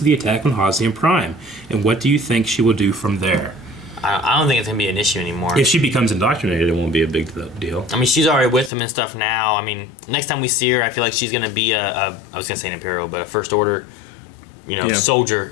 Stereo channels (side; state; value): right; drops out; at 8.7 s